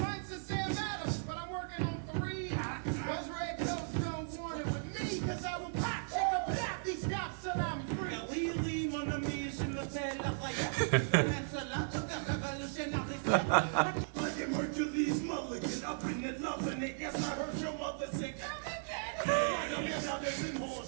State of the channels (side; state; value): left; silent; digital silence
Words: of Sam Adams, but I'm working on 3. Those red coats don't want it with me, cause I will pop, check up that these cops till I'm free. Oui, mon ami, je m'appelle Lafayette. Like it Hercules Mulligan, up in it, loving it. Yes, I heard your mother say, come and get it. Like I'm brothers and